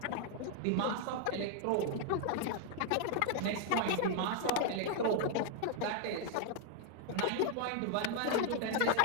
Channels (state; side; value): different; both; correlation 0.00